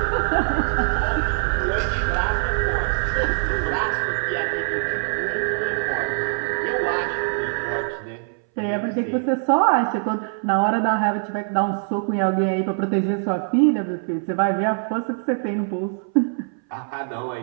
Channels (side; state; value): left; silent; 61 dB below the other